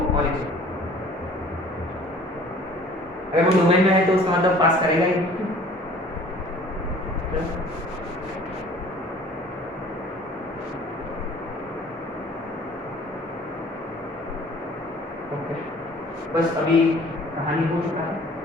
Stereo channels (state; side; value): normal; both; correlation 0.51